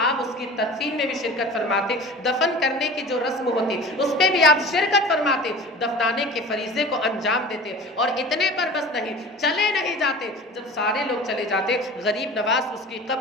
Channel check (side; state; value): both; normal; correlation 0.38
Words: آپ اس کی تدفین میں بھی شرکت فرماتے، دفن کرنے کی جو رسم ہوتی اس پہ بھی آپ شرکت فرماتے، دفنانے کے فریضے کو انجام دیتے، اور اتنے پر بس نہیں، چلے نہیں جاتے، جب سارے لوگ چلے جاتے، غریب نواز اس کی